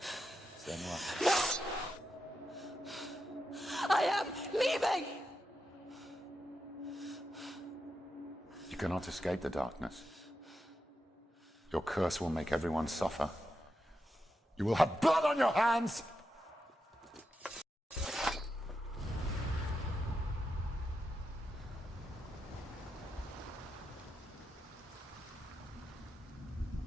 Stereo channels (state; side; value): normal; both; correlation 0.87